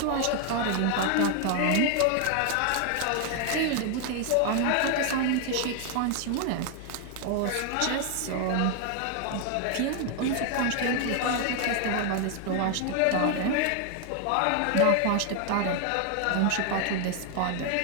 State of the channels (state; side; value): different; both; correlation 0.01